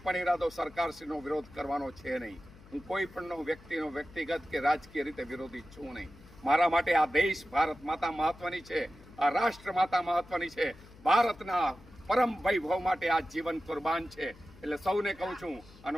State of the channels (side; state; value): left; noise; hum, 22 dB below the sound